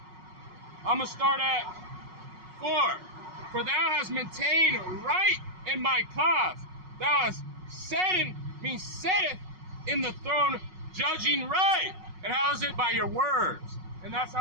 I'm going to start at 4. For thou hast maintained right in my cause. Thou hast setteth in the throne, judging right. And how is it? By your words. And that's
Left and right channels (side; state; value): left; late; 5.4 ms